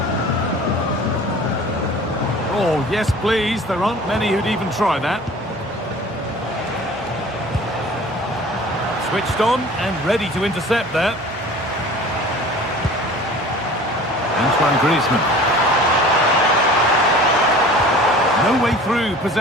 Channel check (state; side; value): normal; both; correlation 0.44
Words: Oh, yes, please. There aren't many who'd even try that. Switched on and ready to intercept that. Antoine Griezmann. No way through.